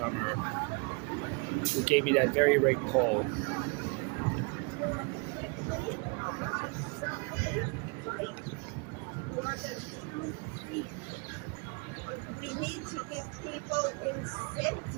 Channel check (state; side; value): quieter; left; 31.9 dB